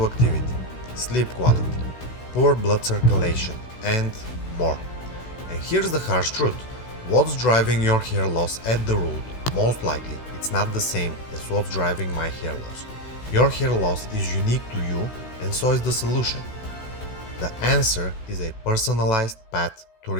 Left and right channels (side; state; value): right; late; 16 ms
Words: activity, sleep quality, poor blood circulation, and more. And here's the harsh truth. What's driving your hair loss at the root, most likely it's not the same as what's driving my hair loss. Your hair loss is unique to you, and so is the solution. The answer is a personalized path to